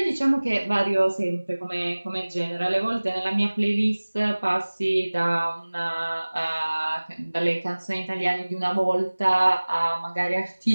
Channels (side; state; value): both; inverted; correlation -1.00